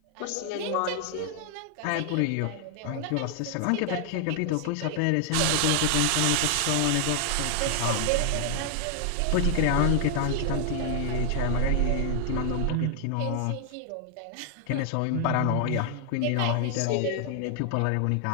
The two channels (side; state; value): both; different; correlation 0.00